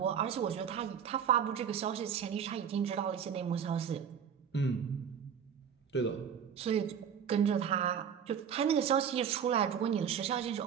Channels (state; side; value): quieter; left; 7.9 dB